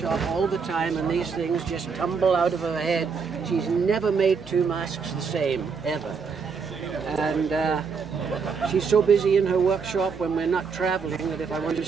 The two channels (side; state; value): left; quieter; 5.6 dB